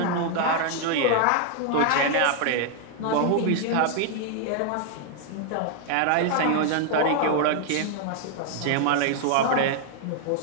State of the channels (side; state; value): both; different; correlation 0.00